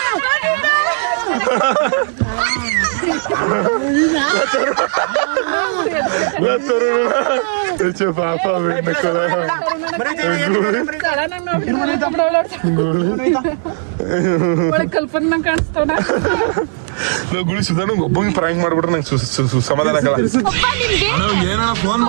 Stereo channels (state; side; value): silent; left; 56 dB below the other